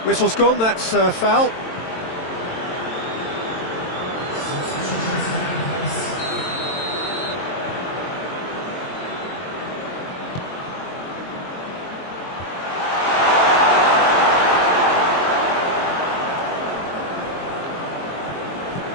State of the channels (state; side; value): late; right; 22 ms